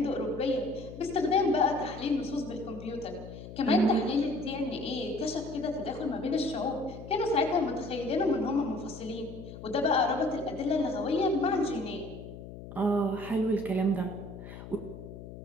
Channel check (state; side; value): noise; left; hum, 13 dB below the sound